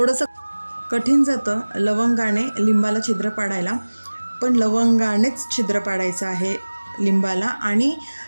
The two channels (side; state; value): both; inverted; correlation -1.00